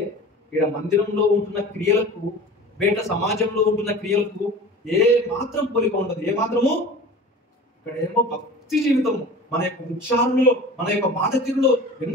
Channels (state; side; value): normal; both; correlation 0.38